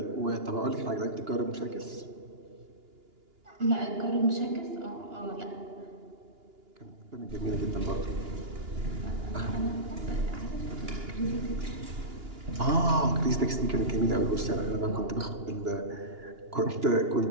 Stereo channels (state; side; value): late; left; 2.9 ms